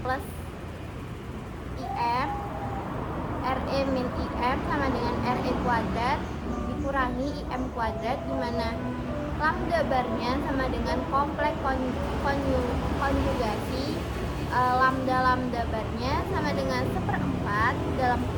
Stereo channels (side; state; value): both; identical; correlation 1.00